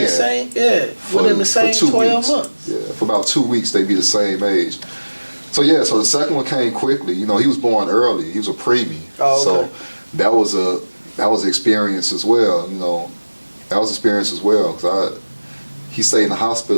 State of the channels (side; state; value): both; inverted; correlation -1.00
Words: same, within the same 12 months. Yeah, for about 2 weeks they'd be the same age. So yeah, so the second one came quickly. You know, he was born early. He was a preemie. Oh, okay. So that was an experience as well, you know. That was an experience as well, because he stayed in the